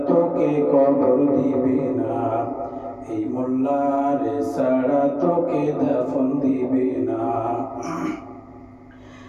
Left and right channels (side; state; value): both; identical; correlation 1.00